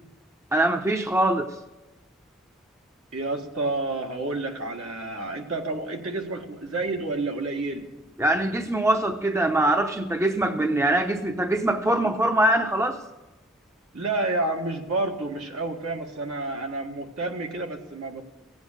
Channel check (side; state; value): both; normal; correlation 0.49